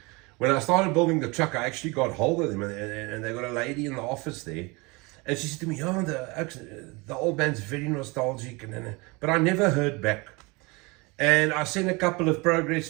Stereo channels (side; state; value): left; quieter; 26.4 dB